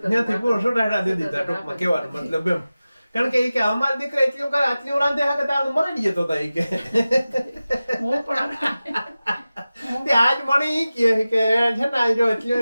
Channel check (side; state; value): both; inverted; correlation -0.96